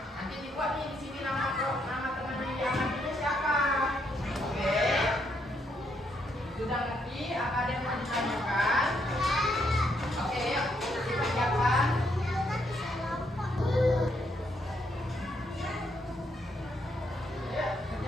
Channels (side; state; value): both; normal; correlation 0.75